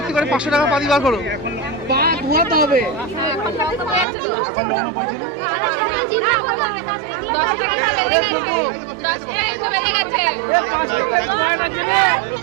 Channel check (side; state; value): left; drops out; at 4.0 s